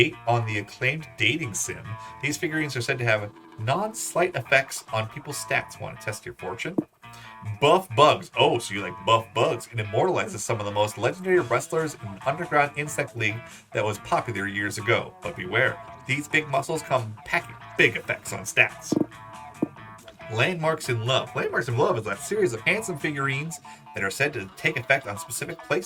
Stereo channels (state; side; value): identical; both; correlation 1.00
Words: on the acclaimed dating sim. These figurines are said to have non-slight effects on people's stats. Want to test your fortune? Buff Bugs. Oh, so you like Buff Bugs. It immortalizes some of the most legendary wrestlers in an underground insect league that was popular years ago. But beware, these big muscles come packing big effects on stats. Landmarks in Love. Landmarks in Love is a series of handsome figurines that are said to take effect on specific